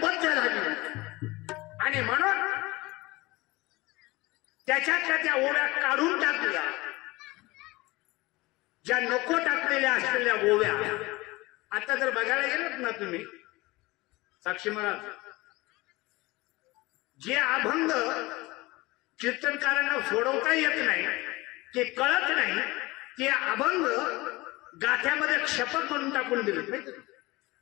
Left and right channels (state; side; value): quieter; right; 21.6 dB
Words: बद्ध झाली आणि म्हणून त्याच्यातल्या त्या ओव्या काढून टाकल्या. ज्या नको टाकलेल्या असलेल्या ओव्या आता जर बघायला गेलात ना तुम्ही साक्षी महाराज जे अभंग कीर्तनकारांना सोडवता येत नाही ते कळत नाही ते अभंग गाठ्यामध्ये क्षपक म्हणून टाकून दिले.